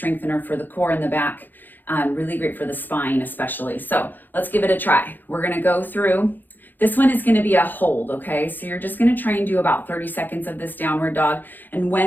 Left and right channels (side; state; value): right; late; 0.089 ms